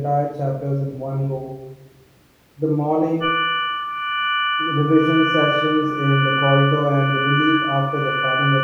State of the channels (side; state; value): both; identical; correlation 1.00